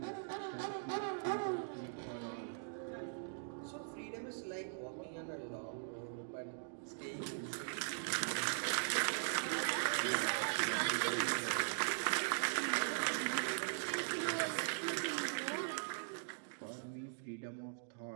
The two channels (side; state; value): left; silent; digital silence